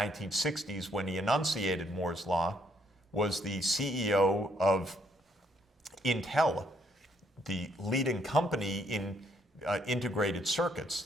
when he enunciated Moore's Law, was the CEO of Intel, the leading company in integrated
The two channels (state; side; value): normal; both; correlation 0.70